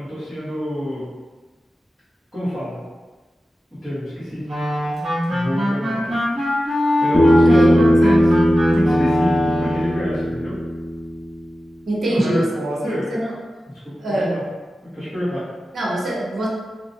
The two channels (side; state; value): both; normal; correlation 0.94